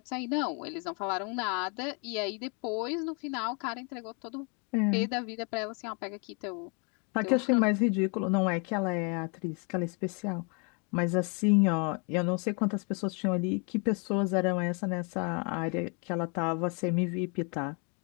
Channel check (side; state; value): right; quieter; 35.5 dB